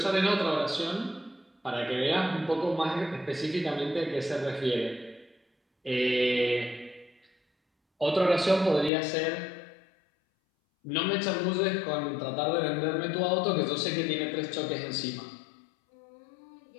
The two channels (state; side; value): drops out; right; at 8.9 s